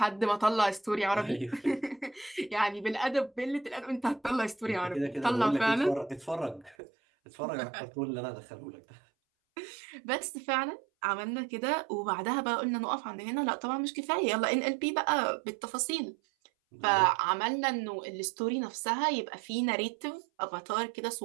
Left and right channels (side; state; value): left; drops out; at 6.8 s